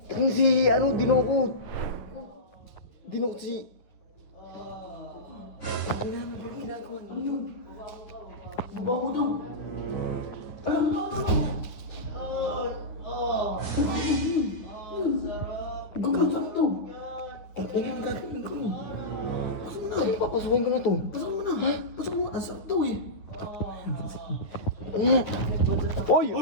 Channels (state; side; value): late; right; 10 ms